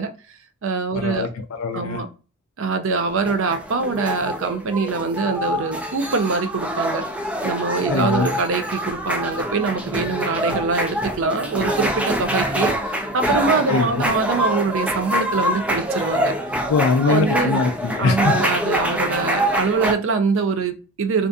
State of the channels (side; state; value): both; normal; correlation 0.26